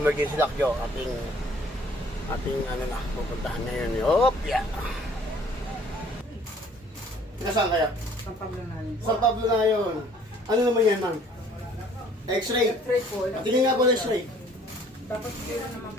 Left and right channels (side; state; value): both; normal; correlation 0.56